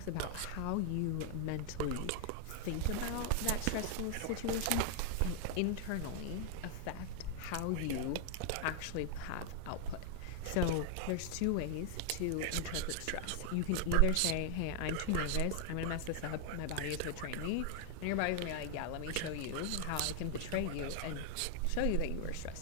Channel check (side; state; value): both; different; correlation 0.00